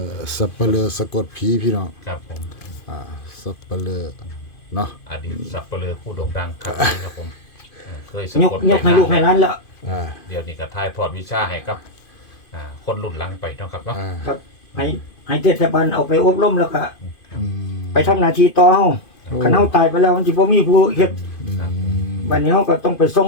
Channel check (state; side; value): late; right; 2.5 ms